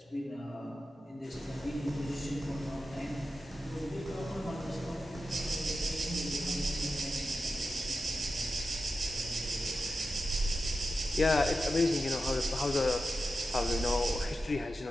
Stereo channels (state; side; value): normal; both; correlation 0.91